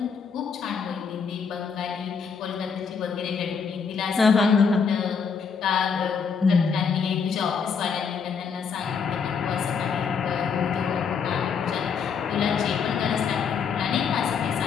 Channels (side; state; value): right; quieter; 6.0 dB